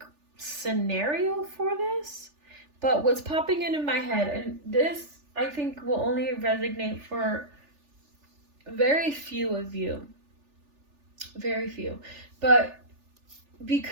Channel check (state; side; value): late; left; 3.4 ms